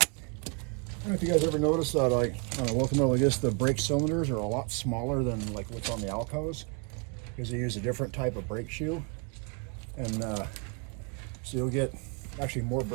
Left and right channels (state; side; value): quieter; left; 33.8 dB